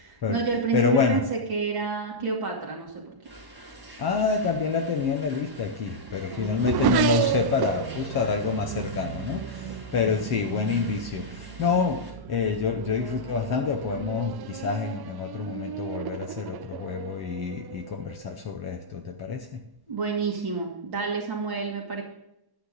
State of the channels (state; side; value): late; left; 1.1 ms